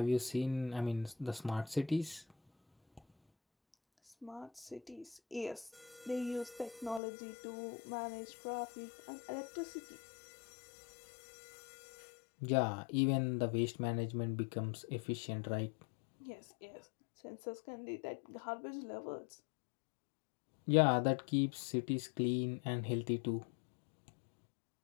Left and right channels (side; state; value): right; drops out; at 7.0 s